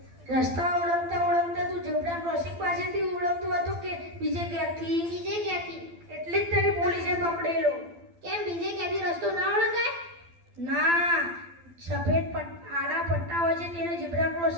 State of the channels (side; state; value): left; late; 12 ms